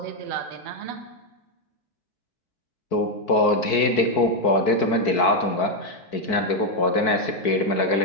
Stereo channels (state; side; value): late; right; 4.6 ms